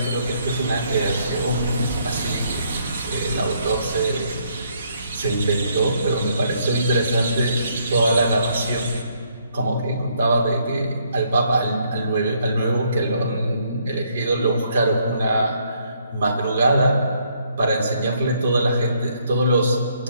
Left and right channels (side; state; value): both; inverted; correlation -0.70